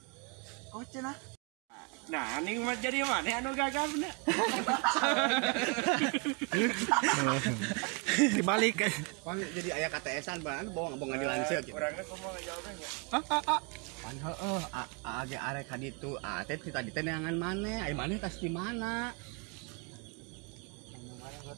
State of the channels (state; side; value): quieter; left; 33.0 dB